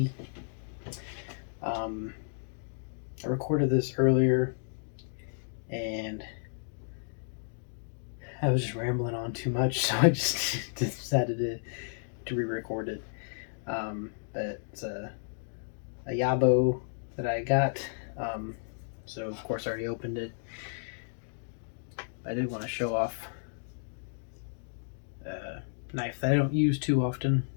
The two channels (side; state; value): right; silent; digital silence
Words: I recorded this earlier and I was just rambling on too much, so I just decided to re-record it. But it's a YABO that I got, so of course I already opened it. I did want to show off a knife that I don't use too often.